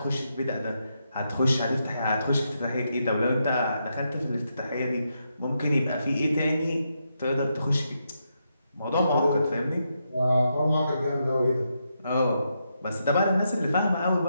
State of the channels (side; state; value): both; inverted; correlation -0.82